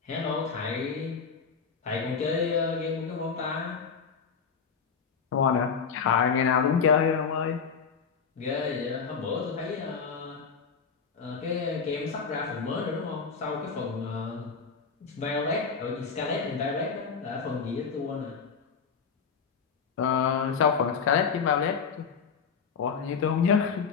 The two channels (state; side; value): quieter; right; 5.9 dB